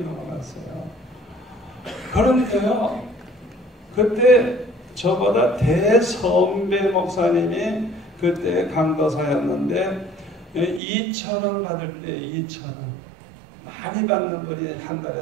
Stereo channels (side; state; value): left; drops out; at 10.8 s